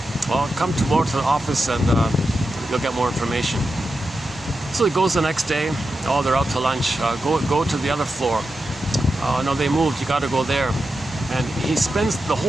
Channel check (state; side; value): normal; both; correlation 0.89